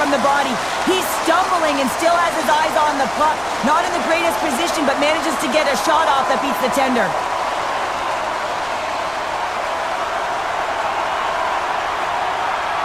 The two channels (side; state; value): left; noise; rumble, 23 dB below the sound